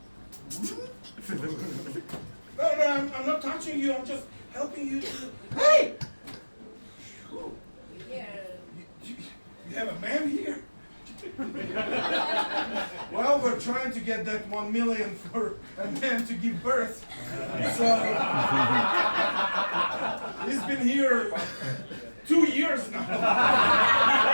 No, I'm not touching you. I'm just helping you to. Hey! You have a man here? Well, we're trying to get that 1 million for a man to give birth. So he's been here 2 years now.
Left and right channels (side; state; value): both; inverted; correlation -1.00